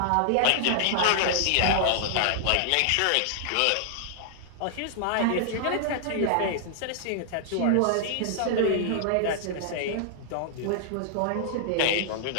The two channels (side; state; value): both; different; correlation -0.01